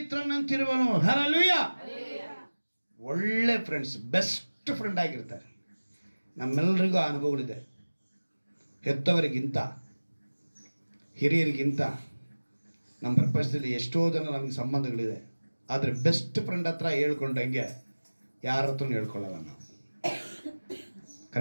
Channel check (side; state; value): both; inverted; correlation -1.00